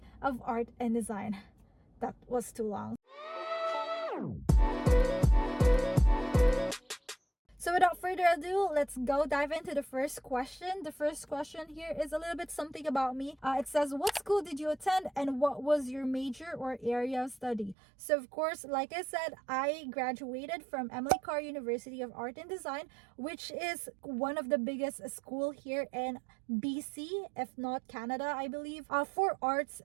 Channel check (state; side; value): drops out; left; at 17.8 s